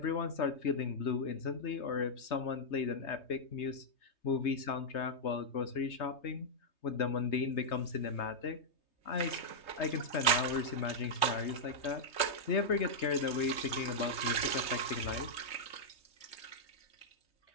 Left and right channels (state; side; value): late; right; 3.2 ms